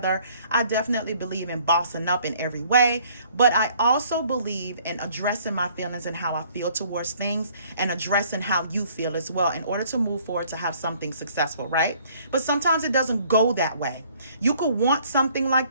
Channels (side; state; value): both; inverted; correlation -0.59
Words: I definitely believe in bossing up in every way. But I also believe in addressing my feelings and how I feel towards things, and addressing how you feel as well, in order to move forward to have something successful, right? But sometimes it doesn't go that way. You could want something like